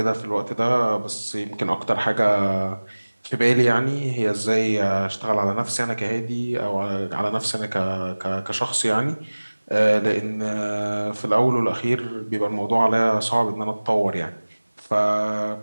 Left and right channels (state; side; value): inverted; both; correlation -1.00